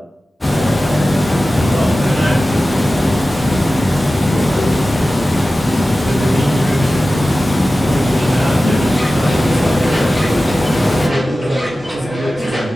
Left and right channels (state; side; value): normal; both; correlation 0.95